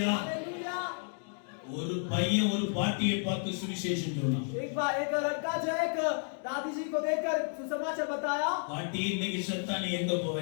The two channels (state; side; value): silent; right; 56 dB below the other